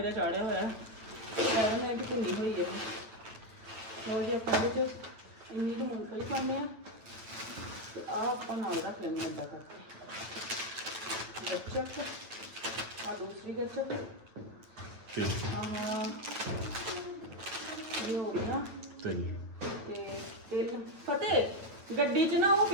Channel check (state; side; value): late; left; 9.2 ms